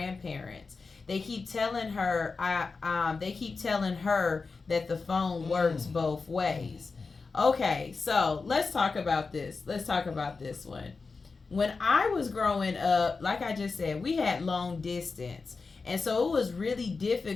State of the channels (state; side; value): quieter; right; 4.4 dB